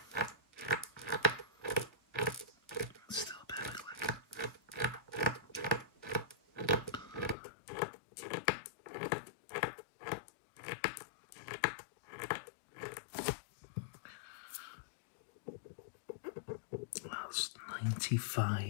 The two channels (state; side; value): drops out; right; at 7.4 s